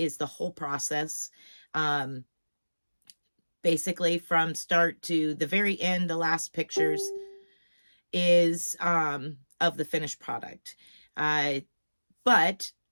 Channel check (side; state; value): both; inverted; correlation -1.00